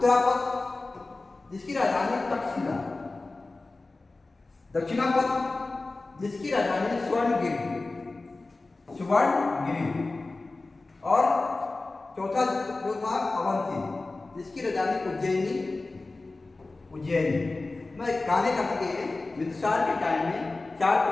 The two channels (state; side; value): quieter; right; 3.3 dB